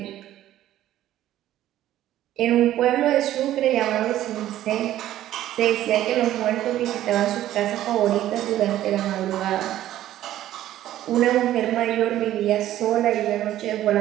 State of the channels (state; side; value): quieter; left; 13.1 dB